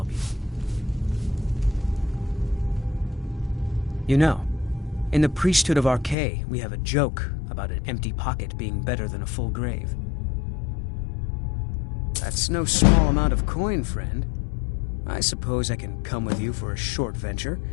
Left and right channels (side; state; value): right; drops out; at 6.2 s